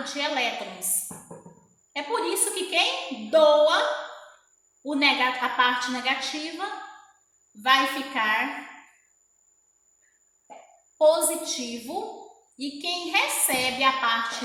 de elétrons. É por isso que quem doa a parte negativa vai ficar positivo e quem recebe a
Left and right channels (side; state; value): both; identical; correlation 1.00